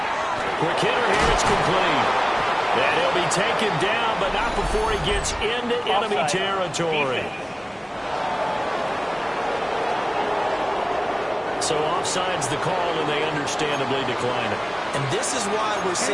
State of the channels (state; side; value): identical; both; correlation 1.00